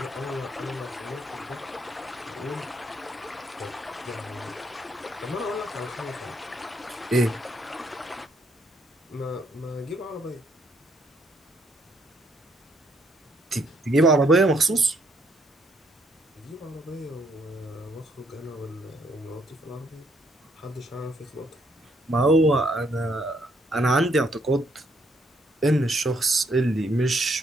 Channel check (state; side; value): normal; both; correlation 0.71